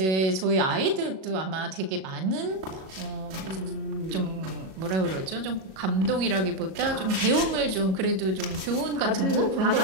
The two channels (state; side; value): late; left; 37 ms